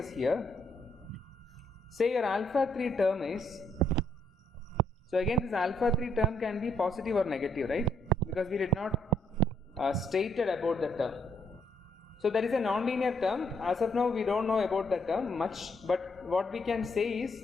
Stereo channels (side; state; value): both; normal; correlation 0.72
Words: here. Say your alpha 3 term is, so again this alpha 3 term can be positive or negative, right? Because we did not stated about the term. So there is a nonlinear term. As of now we don't know about the term much, but what we can say is